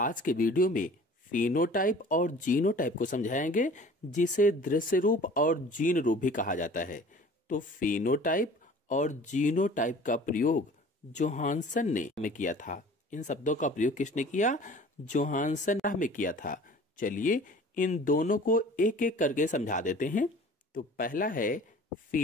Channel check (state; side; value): normal; both; correlation 0.46